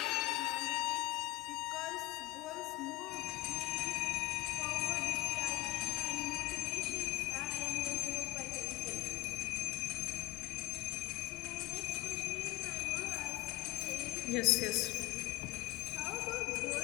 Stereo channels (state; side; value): quieter; right; 20.3 dB